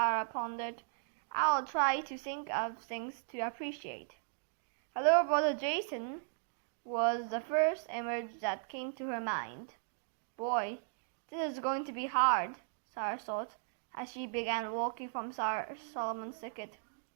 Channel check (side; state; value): left; silent; digital silence